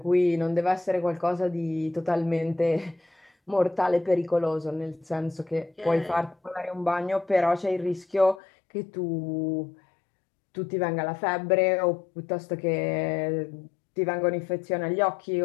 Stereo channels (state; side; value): drops out; right; at 8.4 s